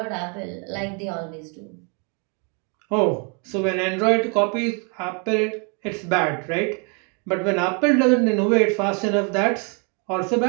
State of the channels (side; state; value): left; quieter; 36.4 dB